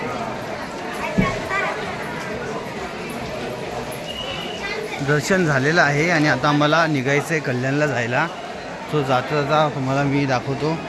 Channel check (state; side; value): identical; both; correlation 1.00